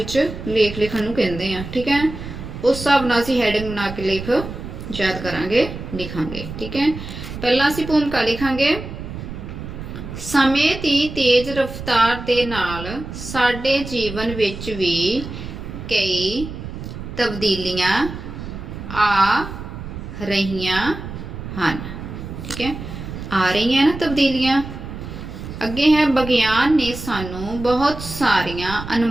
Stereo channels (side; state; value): right; noise; rumble, 9 dB below the sound